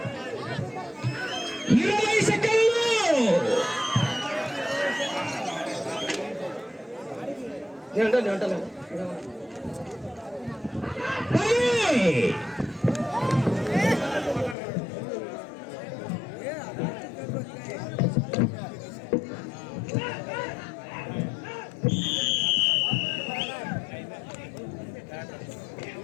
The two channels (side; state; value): right; drops out; at 14.6 s